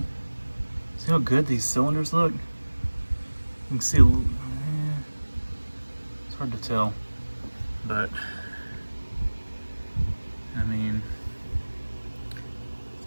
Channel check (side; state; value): both; inverted; correlation -1.00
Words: how good these cylinders look? You can see it's hard to tell, but I mean,